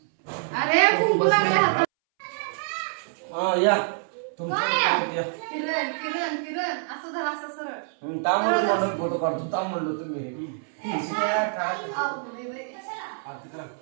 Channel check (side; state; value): left; silent; 61 dB below the other